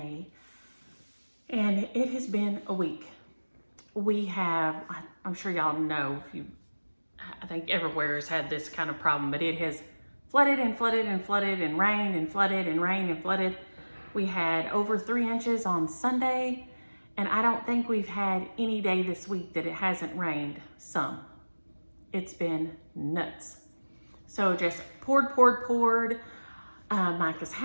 and it has been a week. We have, I'm sure y'all know, I think everywhere has had this kind of problem, but it has flooded and flooded and flooded and rained and flooded and rained and flooded. We had over 3 inches on Sunday, and I don't think we've had any day this week that it hasn't rained some. It's been nuts. So just poured. Micah's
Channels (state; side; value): inverted; both; correlation -1.00